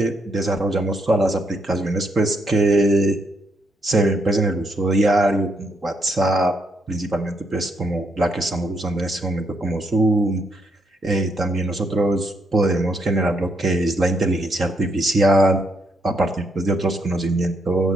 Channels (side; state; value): both; normal; correlation 0.76